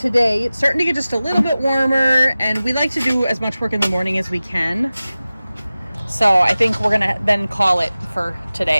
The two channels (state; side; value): inverted; both; correlation -0.97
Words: it's starting to get just a little bit warmer, and we like to do as much work in the morning as we can. So I think we're gonna then call it for